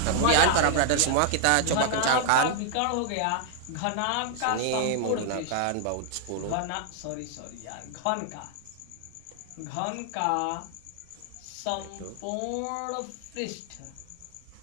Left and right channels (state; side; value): different; both; correlation 0.00